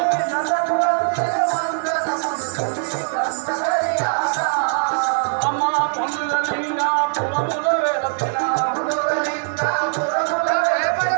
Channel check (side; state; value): left; silent; digital silence